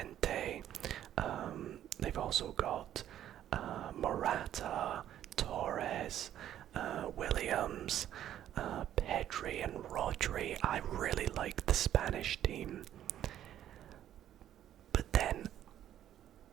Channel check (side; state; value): left; quieter; 11.3 dB